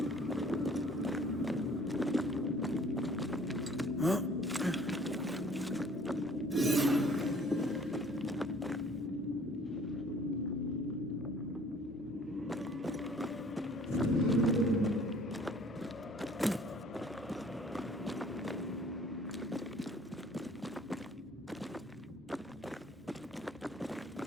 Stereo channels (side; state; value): both; normal; correlation 0.55